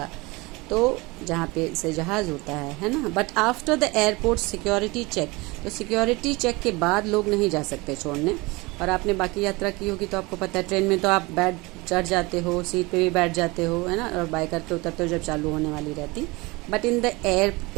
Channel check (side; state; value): left; quieter; 24.1 dB